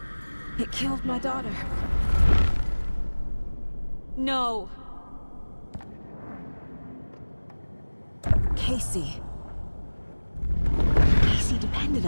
It killed my daughter. No. Casey. Casey depended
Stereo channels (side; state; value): both; inverted; correlation -1.00